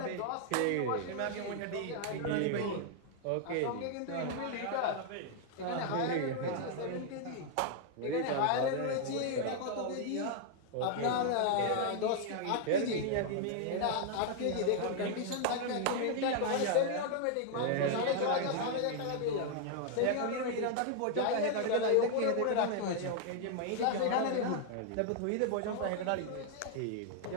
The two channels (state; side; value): different; both; correlation 0.00